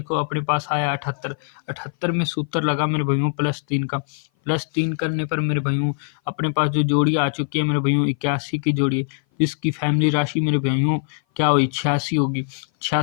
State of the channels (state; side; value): silent; right; 58 dB below the other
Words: को अपने पास आया 78। 78 में सूत्र लगा मेरे भाइयों +3 का। +3 करने पर मेरे भाइयों अपने पास जो जोड़ी आ चुकी है मेरे भाइयों 81 की जोड़ी, जिसकी फैमिली राशि मेरे भाइयों क्या हुई 86 होगी।